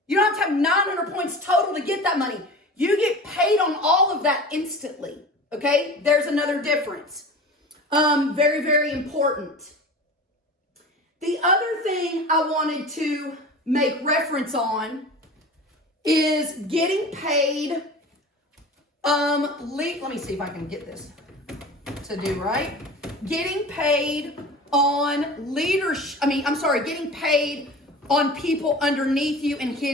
You don't have to have 900 points total to get that money. You get paid on all of that instantly, okay? There's another difference. Very, very important. The other thing I wanted to make reference on is getting paid. Let me see if I can get this to do right. Getting paid on leadership. Getting paid on people underneath you and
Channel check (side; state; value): both; normal; correlation 0.36